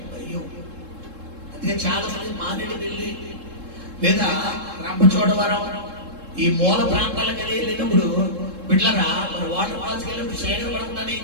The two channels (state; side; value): late; left; 3.7 ms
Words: అయ్యో. అందుకే చాలా మంది మారేడుమిల్లి లేదా రంపచోడవరం ఈ మూల ప్రాంతాలకు వెళ్ళినప్పుడు బిడ్డలరా మన వాటర్ ఫాల్స్ వెళ్ళినప్పుడు చీకటి పడకుండా ఏం